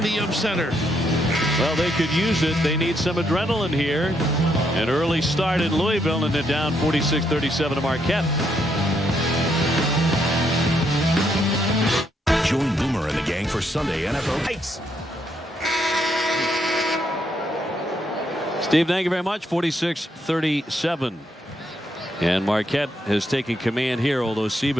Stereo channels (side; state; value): both; normal; correlation 0.76